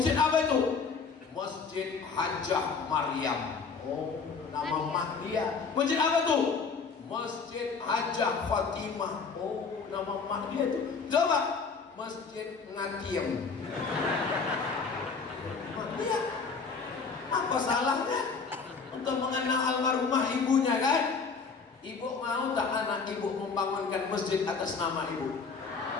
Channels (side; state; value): right; quieter; 5.1 dB